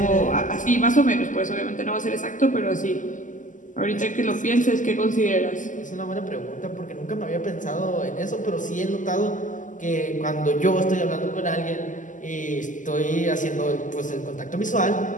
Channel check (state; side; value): late; right; 0.37 ms